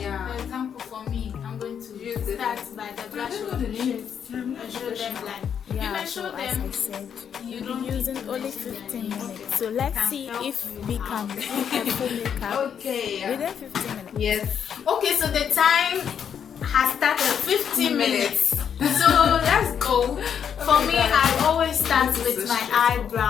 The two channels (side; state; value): right; quieter; 8.0 dB